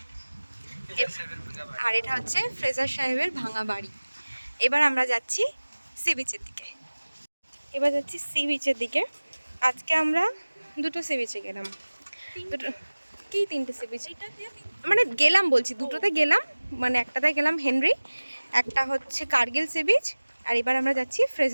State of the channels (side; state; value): both; inverted; correlation -1.00